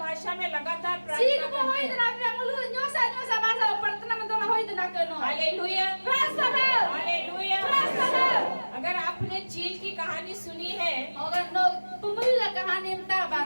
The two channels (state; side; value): inverted; both; correlation -1.00